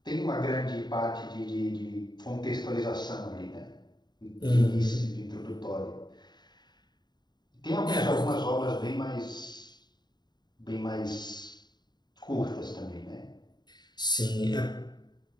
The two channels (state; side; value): late; right; 0.21 ms